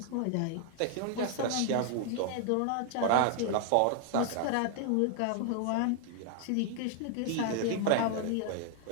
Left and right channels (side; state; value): both; different; correlation 0.00